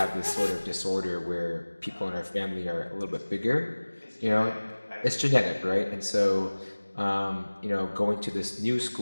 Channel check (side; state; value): both; inverted; correlation -1.00